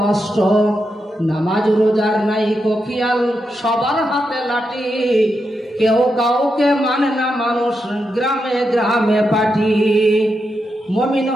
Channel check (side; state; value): both; normal; correlation 0.85